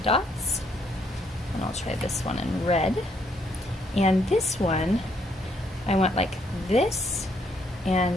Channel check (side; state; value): both; normal; correlation 0.71